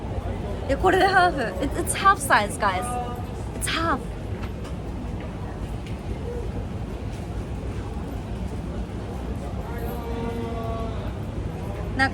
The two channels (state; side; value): identical; both; correlation 1.00